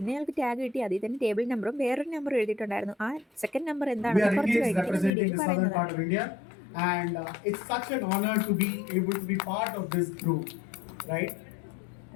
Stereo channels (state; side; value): drops out; right; at 5.1 s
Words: ഞങ്ങൾക്ക് ടാഗ് കിട്ടി, അതിൽ തന്നെ ടേബിൾ നമ്പറും വേറൊരു നമ്പറും എഴുതിയിട്ടുണ്ടായിരുന്നു. ആ സെക്കൻഡ് നമ്പർ എന്താണെന്ന് കുറച്ച് കഴിഞ്ഞിട്ട് പറയുന്നത്. And it's such an honor to be able to be part of this group, right?